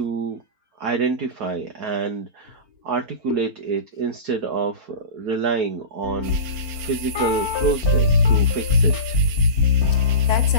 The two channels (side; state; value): left; late; 4.4 ms